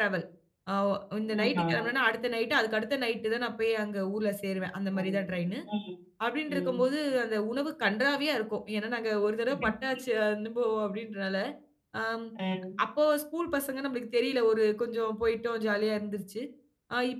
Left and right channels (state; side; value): identical; both; correlation 1.00